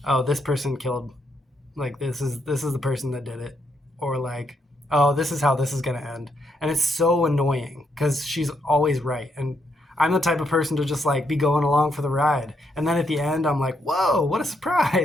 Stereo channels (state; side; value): normal; both; correlation 0.77